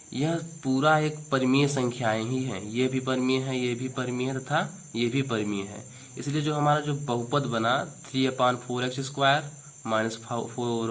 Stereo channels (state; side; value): identical; both; correlation 1.00